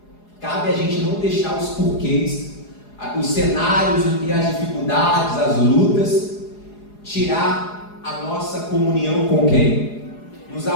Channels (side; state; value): right; late; 4.8 ms